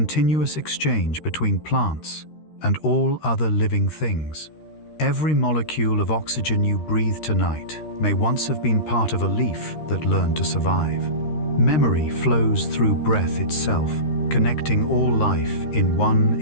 exchange between plants and all other living things. Every molecule of oxygen you breathe tonight may once have been part of a leaf that learned to survive. Memory flows through breath itself, connecting all life in one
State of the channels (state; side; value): late; right; 13 ms